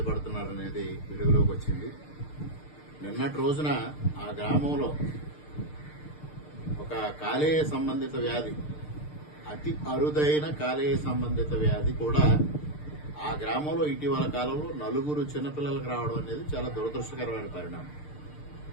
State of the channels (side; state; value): right; late; 6.7 ms